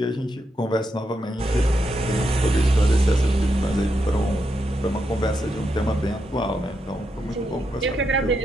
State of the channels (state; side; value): normal; both; correlation 0.83